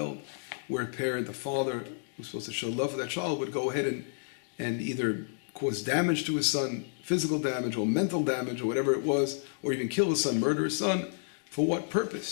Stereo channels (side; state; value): right; silent; digital silence